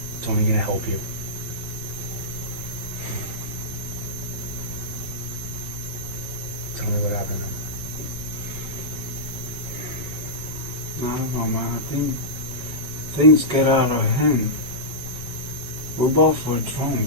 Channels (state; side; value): late; left; 5.3 ms